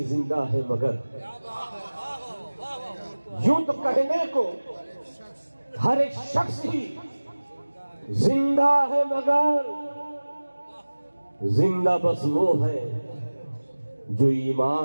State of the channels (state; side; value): inverted; both; correlation -1.00